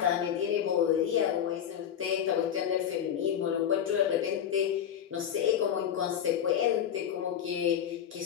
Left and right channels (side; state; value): right; quieter; 9.2 dB